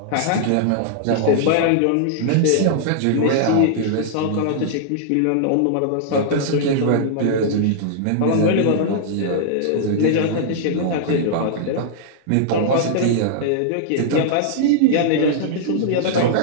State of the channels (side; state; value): both; different; correlation -0.01